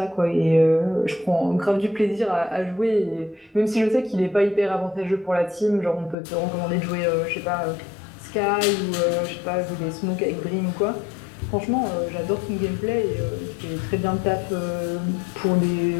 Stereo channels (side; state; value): right; drops out; at 6.2 s